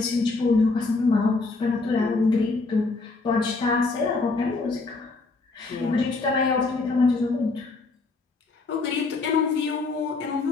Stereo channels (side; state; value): right; quieter; 3.7 dB